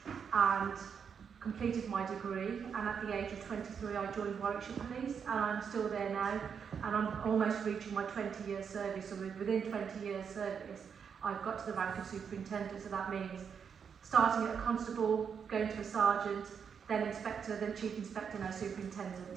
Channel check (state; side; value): quieter; left; 6.9 dB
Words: and completed my degree. And at the age of 23, I joined Warwickshire Police, and I'm still there now, and I'm almost reaching my 20-year service. So within 20 years service, I've got to the rank of superintendent. So that means starting at a constable, going to a sergeant, then inspector, then chief inspector, now